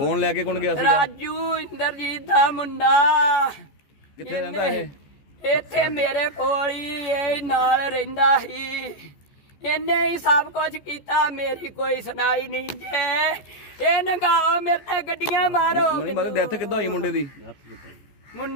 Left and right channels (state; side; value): late; right; 14 ms